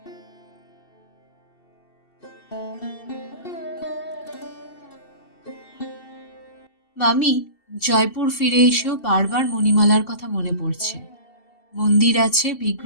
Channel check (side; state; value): right; late; 2.7 ms